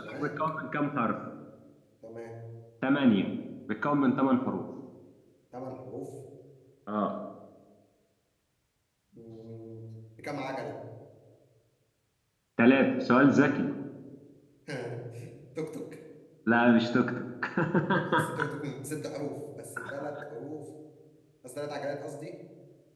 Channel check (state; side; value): identical; both; correlation 1.00